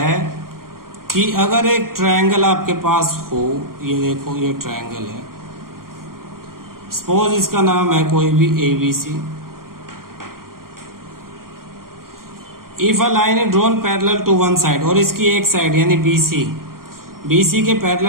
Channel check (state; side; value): late; left; 0.92 ms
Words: कि अगर एक triangle आपके पास हो, ये देखो ये ट्रायंगल है, सपोज इसका नाम है कोई भी ABC। If a line is drawn parallel to one side, और इसकी एक साइड यानी BC के